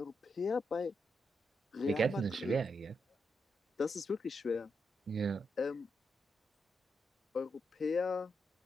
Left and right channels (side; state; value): both; normal; correlation 0.83